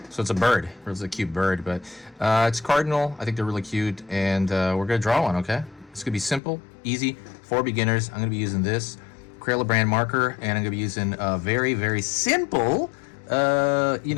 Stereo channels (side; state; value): right; drops out; at 6.4 s